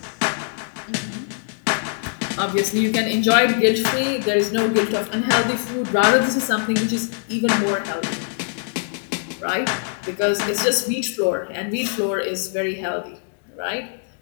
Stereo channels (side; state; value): right; silent; 64 dB below the other